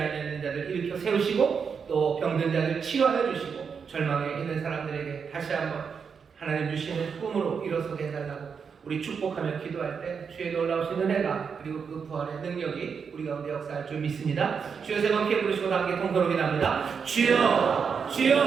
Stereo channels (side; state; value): left; quieter; 6.2 dB